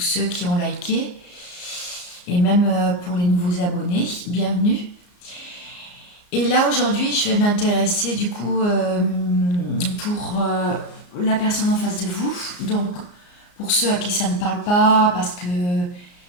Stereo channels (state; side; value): late; right; 34 ms